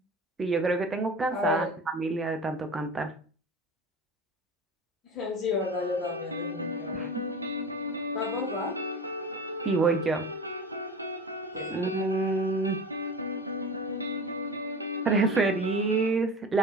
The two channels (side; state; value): both; normal; correlation 0.33